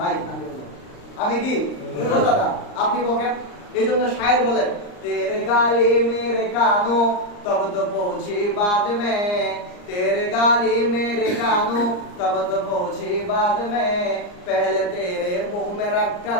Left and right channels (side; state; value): right; late; 39 ms